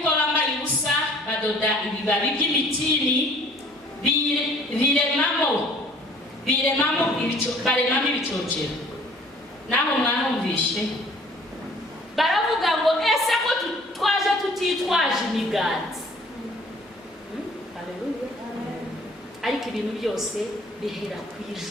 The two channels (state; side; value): normal; both; correlation 0.53